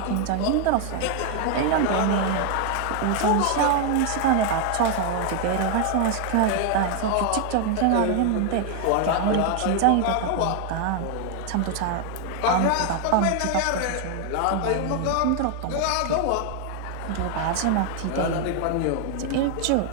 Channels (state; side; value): different; both; correlation 0.00